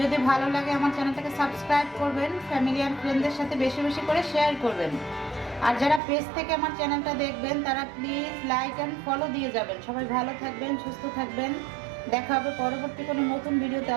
ভালো লাগে আমার চ্যানেলটাকে সাবস্ক্রাইব করবেন, ফ্যামিলি আর ফ্রেন্ডদের সাথে বেশি বেশি করে শেয়ার করবেন। আর যারা পেজ থেকে আমার চ্যানেলটা দেখবেন তারা প্লিজ লাইক অ্যান্ড ফলো দিয়ে যাবেন। সবাই ভালো থাকবেন, সুস্থ থাকবেন। দেখা হবে পরবর্তী কোনো নতুন ভিডিওতে।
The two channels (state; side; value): drops out; left; at 6.0 s